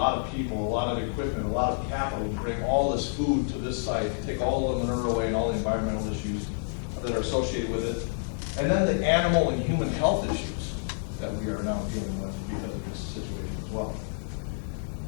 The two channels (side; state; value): right; silent; 58 dB below the other